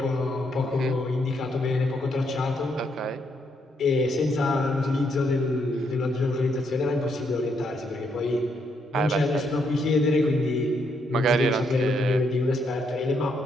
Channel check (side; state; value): both; normal; correlation 0.75